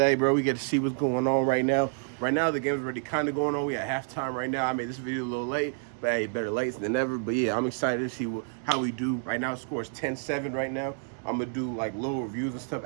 bro. We get to see what's going on right now. Right now, the game's already kind of going on. We at halftime right now. I made this video a little late, but hey, better late than never. But yeah, I'm excited to see how we do. Right now, the score is 10-7 right now. I'm going to do like little reviews and stuff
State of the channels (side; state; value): left; silent; digital silence